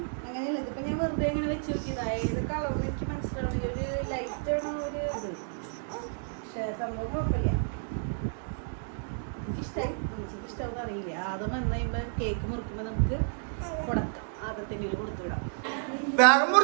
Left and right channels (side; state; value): left; silent; digital silence